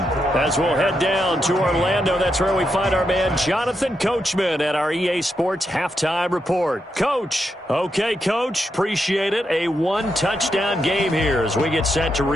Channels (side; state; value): both; normal; correlation 0.83